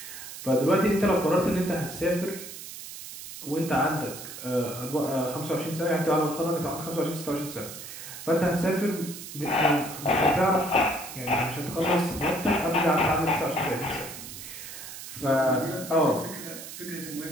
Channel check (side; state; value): right; noise; hiss, 11 dB below the sound